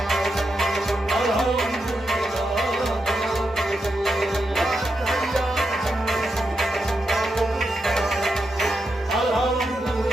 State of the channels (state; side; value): normal; both; correlation 0.85